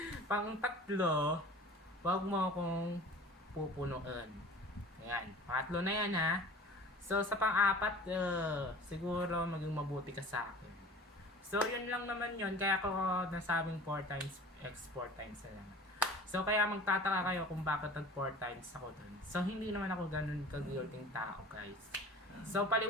pang-tatlo, wag mo akong pupunuan. Ayan, pangatlo na yan ha. So, sa pang-apat, siguro maging mabuti ka sa akin. So, yun lang naman yun. Kaya ako nasabing 4 times X 4 times na lang. So, kaya magtataka kayo kung bakit nag 4 times ako dun. So, hindi naman ako ganun ka-guilting tao, guys. So,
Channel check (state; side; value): normal; both; correlation 0.41